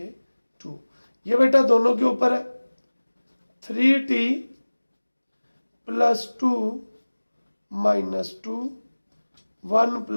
ये बेटा दोनों के ऊपर है। 3t plus 2 -2 1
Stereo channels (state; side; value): inverted; both; correlation -1.00